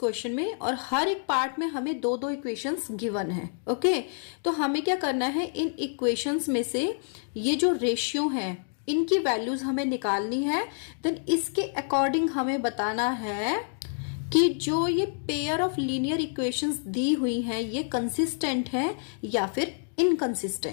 में और हर एक पार्ट में हमें दो दो इक्वेशंस गिवन है। ओके, तो हमें क्या करना है, इन इक्वेशंस में से ये जो रेशियो हैं इनकी वैल्यूज हमें निकालनी है। देन इसके अकॉर्डिंग हमें बताना है कि जो ये पेयर ऑफ लीनियर इक्वेशंस दी हुई हैं ये कंसिस्टेंट है या फिर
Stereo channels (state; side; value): silent; right; 59 dB below the other